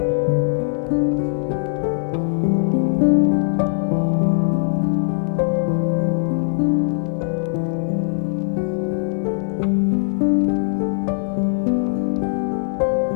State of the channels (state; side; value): silent; right; 64 dB below the other